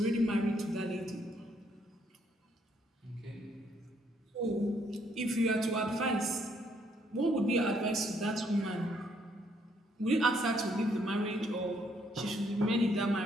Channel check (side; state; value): both; normal; correlation 0.70